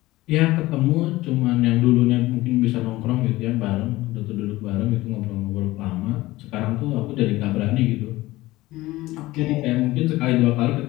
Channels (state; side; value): quieter; right; 18.4 dB